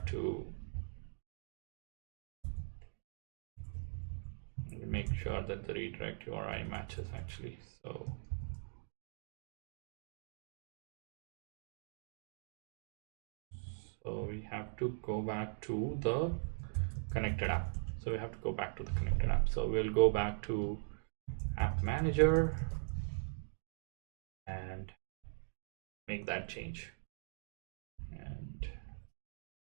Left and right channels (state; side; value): silent; left; digital silence